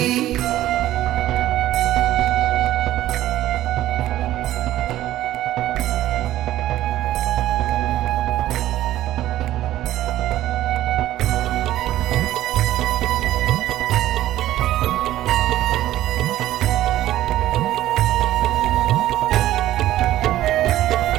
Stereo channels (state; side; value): quieter; left; 14.2 dB